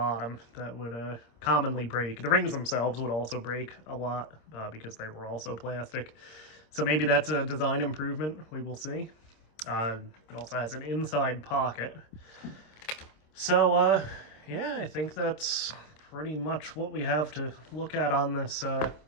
that would commonly break. The rings themselves would also break a lot, because they were also plastic. So maybe that's a design improvement, we will see. It also has an inside pocket. So, yeah, I think that's pretty much what we have to look at on this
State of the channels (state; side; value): late; right; 26 ms